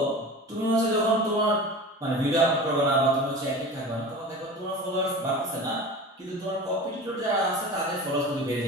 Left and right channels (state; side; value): normal; both; correlation 0.34